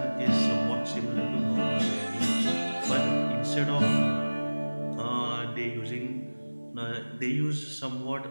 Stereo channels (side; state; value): both; inverted; correlation -1.00